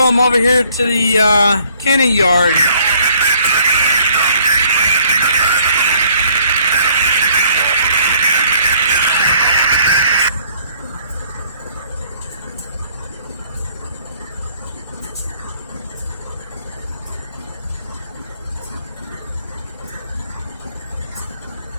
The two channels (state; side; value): inverted; both; correlation -0.62